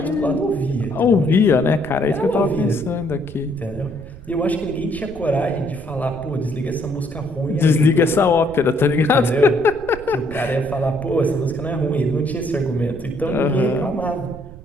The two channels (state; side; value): noise; right; rumble, 16 dB below the sound